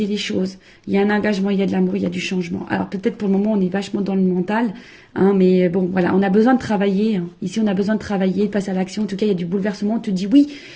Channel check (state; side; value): identical; both; correlation 1.00